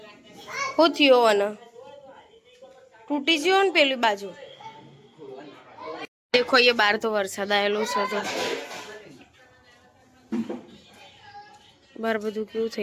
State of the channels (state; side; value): identical; both; correlation 1.00